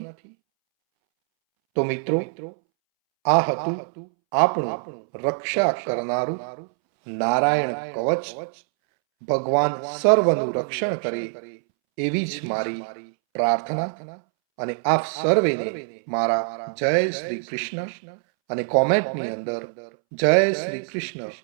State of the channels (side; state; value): left; silent; 63 dB below the other